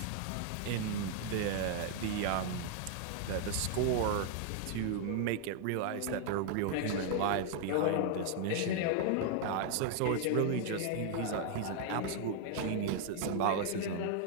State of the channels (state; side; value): different; both; correlation 0.00